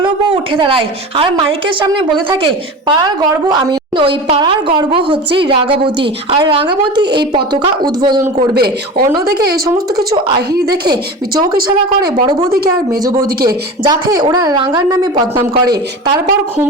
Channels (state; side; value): normal; both; correlation 0.31